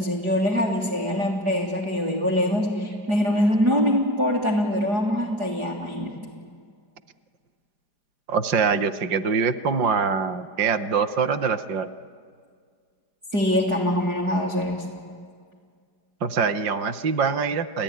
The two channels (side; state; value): left; late; 4.9 ms